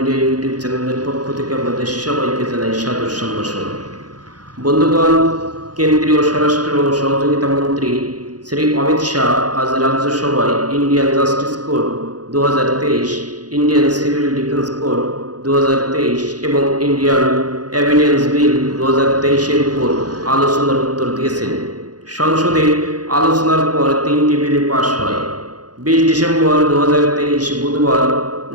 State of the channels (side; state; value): left; late; 0.69 ms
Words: ইউটিউব চ্যানেলের পক্ষ থেকে আপনাদের সবাইকে জানাই সাদর সম্ভাষণ। বন্ধুগণ, কেন্দ্রীয় স্বরাষ্ট্র ও সহযোগিতা মন্ত্রী শ্রী অমিত শাহ আজ রাজ্যসভায় Indian justice code 2023, Indian civil defence code 2023 এবং ইন্ডিয়ান এভিডেন্স বিল 2023-এর উপর আলোচনার উত্তর দিয়েছেন। সংসদে আলোচনার পর 3টি বিলে পাশ হয়। 20 ডিসেম্বর 2023 বুধবার